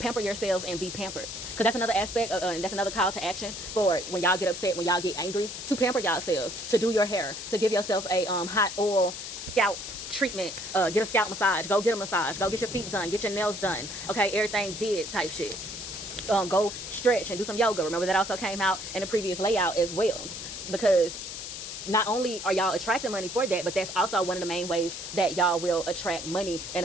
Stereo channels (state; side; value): noise; left; hiss, 8 dB below the sound